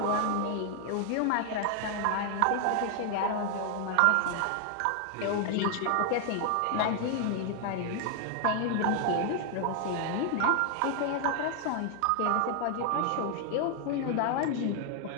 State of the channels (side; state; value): both; different; correlation 0.00